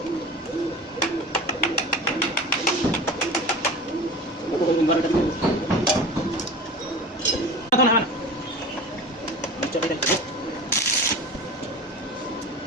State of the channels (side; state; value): both; normal; correlation 0.34